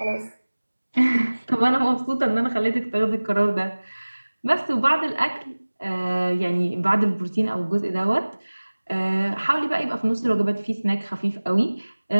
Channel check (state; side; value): inverted; both; correlation -1.00